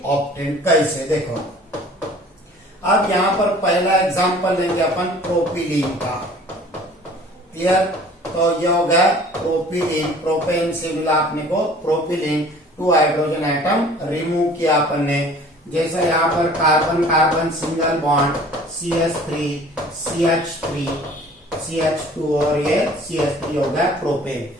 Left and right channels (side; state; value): both; normal; correlation 0.49